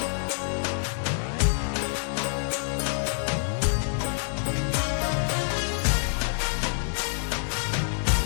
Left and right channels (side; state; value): right; silent; 60 dB below the other